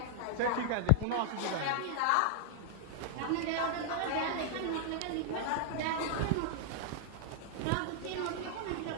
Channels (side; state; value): both; different; correlation -0.01